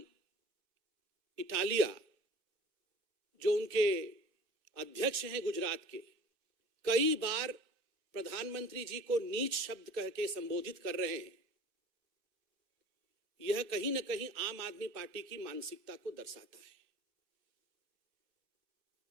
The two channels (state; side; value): late; left; 2.6 ms